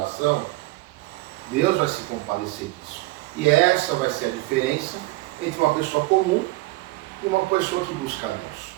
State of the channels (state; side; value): quieter; left; 20.3 dB